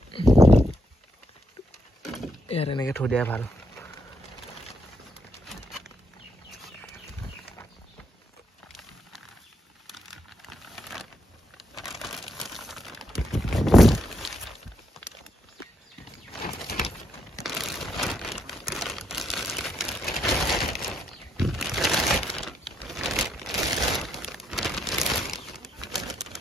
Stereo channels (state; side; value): normal; both; correlation 0.77